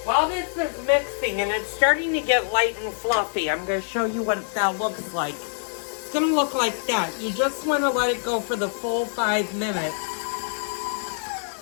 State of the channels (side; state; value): right; silent; digital silence